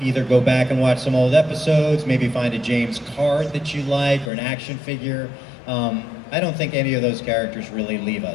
either go back and watch some old episodes, maybe find a James card that you like or an action figure. I don't think any of those characters really leave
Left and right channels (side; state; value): right; drops out; at 4.3 s